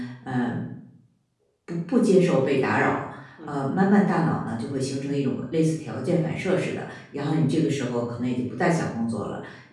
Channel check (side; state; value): both; identical; correlation 1.00